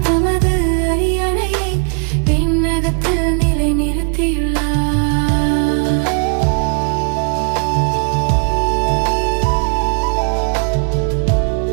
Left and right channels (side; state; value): left; quieter; 39.0 dB